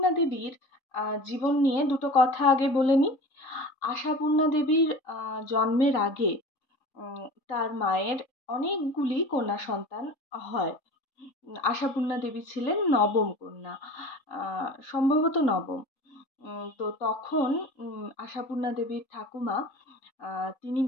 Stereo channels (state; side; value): late; right; 3.8 ms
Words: দেবীর জীবন নিয়ে দুটো কথা আগে বলে নিই। আশাপূর্ণা দেবীর জন্মের আগে তার মায়ের অনেকগুলি কন্যা সন্তান হয়। আশাপূর্ণা দেবী ছিলেন নবম কন্যা, সম্ভবত নবম। তো তখন আশাপূর্ণা দেবীর ঠাকুমা তিনি